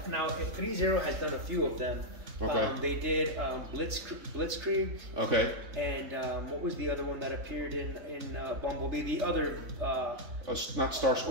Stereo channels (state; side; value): late; left; 3.3 ms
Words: now 3-0 has done a few of them. Okay. They did Blitzkrieg. Okay. And what was the other one that appeared in Bumblebee? The other. Not